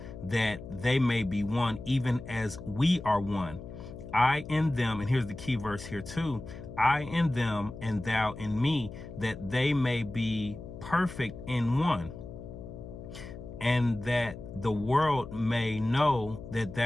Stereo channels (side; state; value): left; noise; hum, 12 dB below the sound